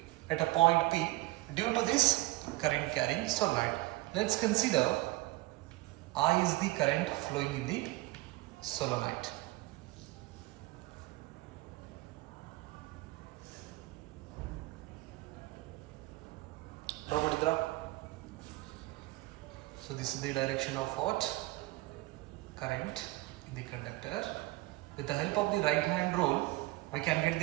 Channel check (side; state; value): left; quieter; 20.3 dB